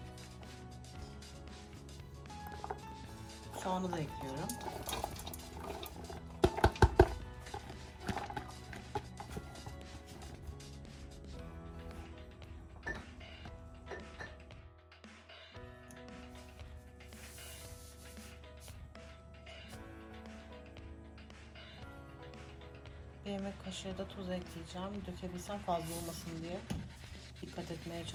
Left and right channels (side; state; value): both; identical; correlation 1.00